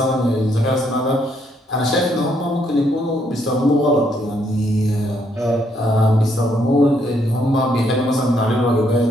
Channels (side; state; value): both; normal; correlation 0.72